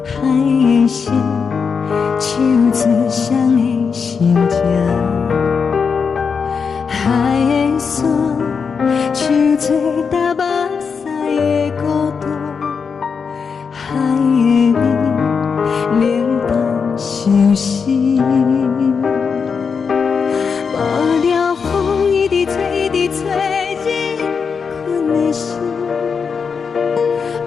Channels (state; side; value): quieter; right; 5.8 dB